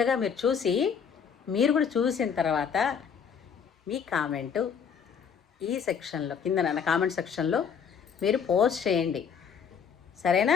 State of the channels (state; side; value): quieter; right; 7.0 dB